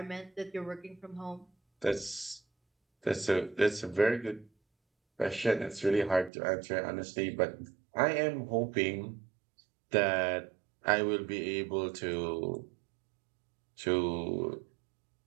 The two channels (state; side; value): drops out; left; at 6.3 s